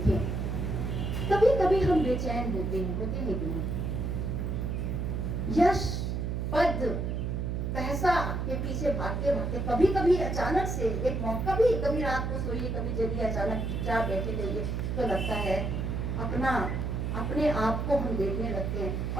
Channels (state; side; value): noise; right; hum, 1 dB below the sound